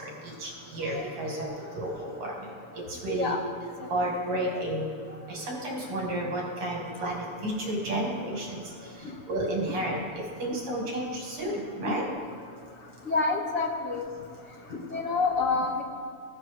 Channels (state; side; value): late; left; 7.0 ms